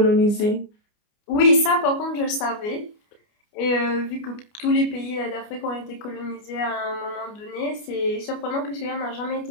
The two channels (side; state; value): right; late; 29 ms